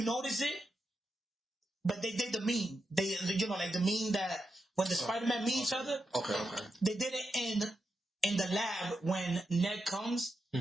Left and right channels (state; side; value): normal; both; correlation 0.86